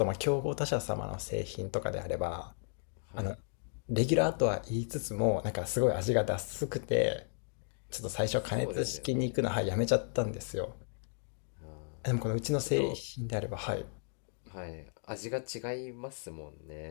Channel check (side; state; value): right; silent; digital silence